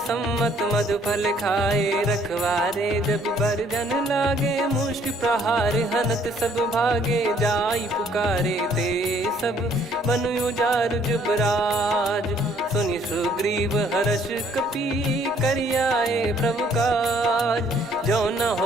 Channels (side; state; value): both; normal; correlation 0.62